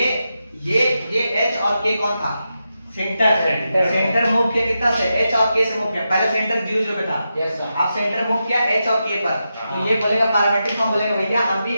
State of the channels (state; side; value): inverted; both; correlation -0.88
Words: h और k कौन था, सेंटर। सेंटर मूव किया कितना से, h और k से मूव किया। पहले सेंटर 0 पे था, यस सर। अब सेंटर मूव किया h और k पर, तो ये बोलेगा पैरामीट्रिक फॉर्म बोलेगा भैया हम भी